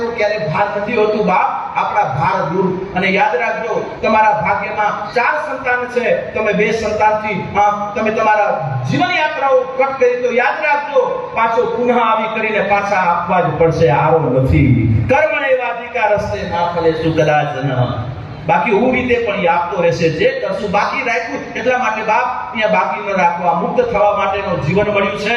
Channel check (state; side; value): identical; both; correlation 1.00